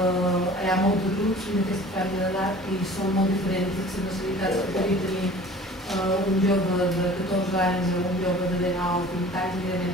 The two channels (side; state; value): both; normal; correlation 0.45